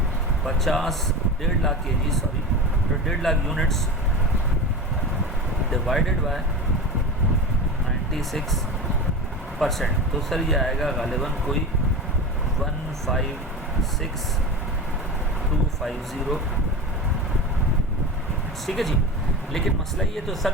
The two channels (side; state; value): both; normal; correlation 0.27